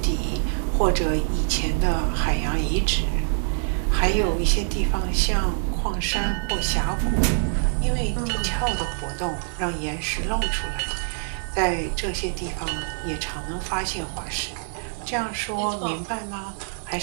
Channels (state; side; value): silent; left; 62 dB below the other